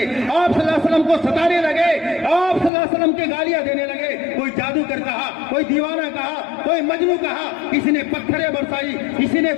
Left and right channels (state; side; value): drops out; right; at 2.7 s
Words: آپ صلی اللہ علیہ وسلم کو ستانے لگے, آپ صلی اللہ علیہ وسلم کے گالیاں دینے لگے. کوئی جادوگر کہا, کوئی دیوانہ کہا, کوئی مجنوں کہا, کسی نے پتھریں برسائی, کسی نے